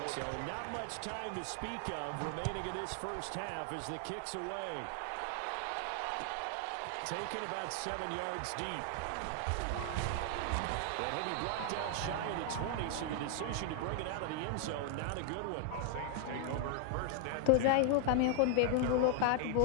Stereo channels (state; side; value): different; both; correlation 0.00